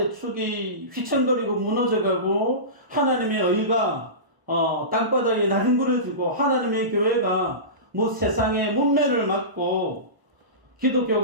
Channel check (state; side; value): late; left; 1.0 ms